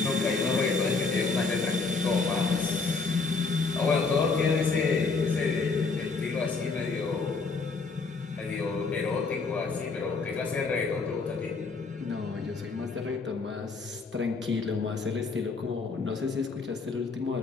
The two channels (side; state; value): right; quieter; 4.3 dB